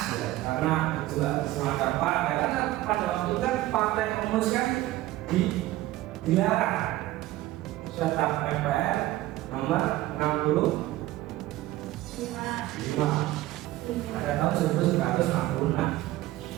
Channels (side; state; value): left; quieter; 16.3 dB